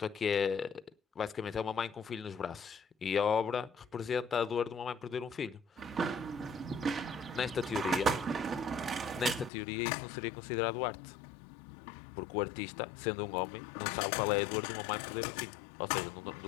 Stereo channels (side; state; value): right; drops out; at 9.5 s